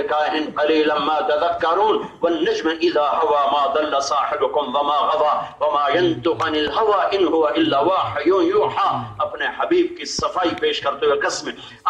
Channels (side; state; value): both; identical; correlation 1.00